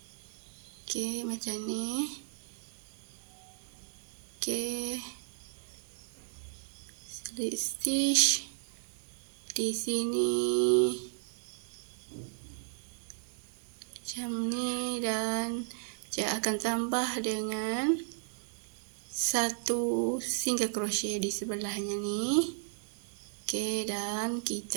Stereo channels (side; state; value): left; silent; 55 dB below the other